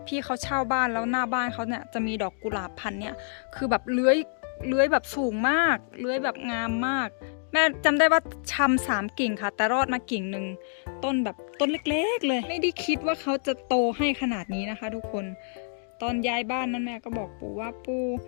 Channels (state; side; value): silent; right; digital silence